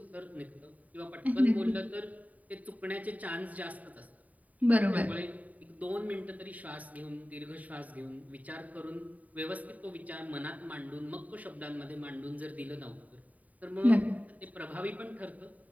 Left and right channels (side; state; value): left; late; 0.072 ms